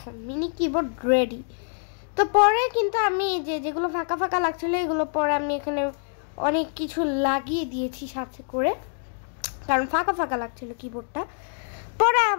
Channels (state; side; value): silent; right; digital silence